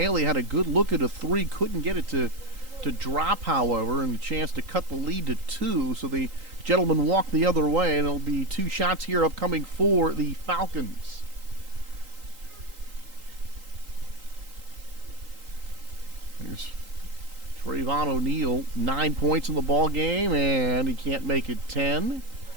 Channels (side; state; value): left; late; 3.8 ms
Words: had a good look at a three, couldn't get it to drop, however, and a chance to cut the lead to 2. So the gentleman walked the other way, and it'll be 2 shots here upcoming for the Falcons. Here's Trayvon O'Neal, 9 points in the ball game, and he can't make it 10.